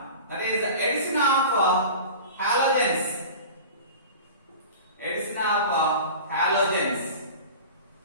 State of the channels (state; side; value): inverted; both; correlation -0.36